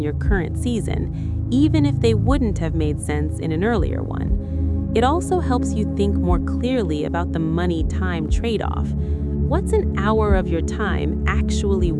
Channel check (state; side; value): identical; both; correlation 1.00